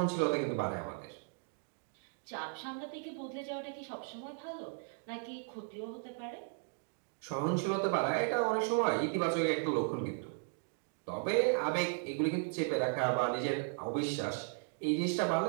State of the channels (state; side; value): silent; left; 54 dB below the other